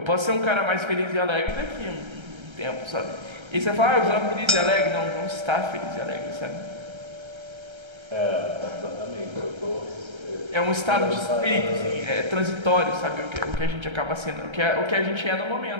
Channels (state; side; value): late; left; 1.3 ms